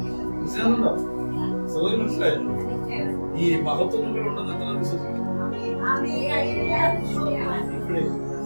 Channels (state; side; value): inverted; both; correlation -1.00